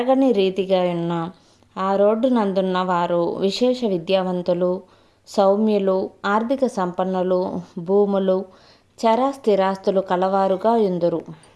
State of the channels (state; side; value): identical; both; correlation 1.00